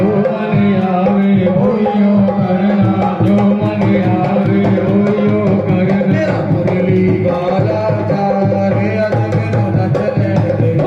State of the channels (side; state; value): both; identical; correlation 1.00